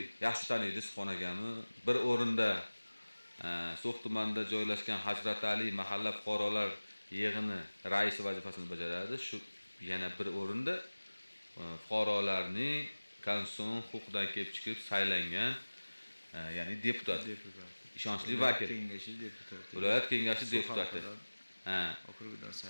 yaxshi taniydi Subhon akamni. Bir o'rinda So'x tumanida joylashgan Hazrat Ali mahalla fuqarolar yig'ini raisi vazifasini bajaradi. Shu yana bir o'rinda fuqarolarning konstitutsion huquqidan kelib chiqib saylangan, ya'ni deputat. Ishonchli vakil. Viloyat kengashi deputati. Okrugidan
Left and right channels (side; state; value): both; inverted; correlation -1.00